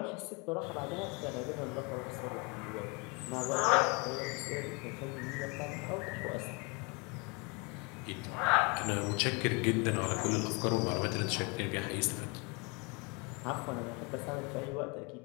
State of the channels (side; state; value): right; quieter; 29.3 dB